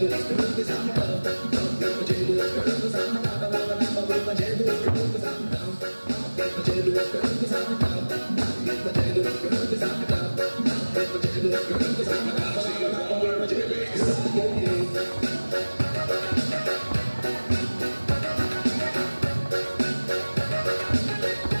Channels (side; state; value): both; inverted; correlation -1.00